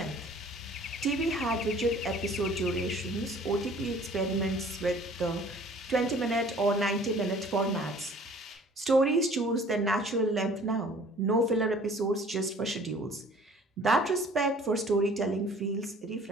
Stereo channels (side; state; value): both; normal; correlation 0.51